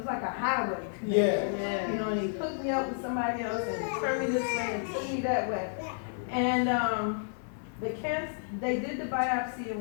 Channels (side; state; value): right; silent; 57 dB below the other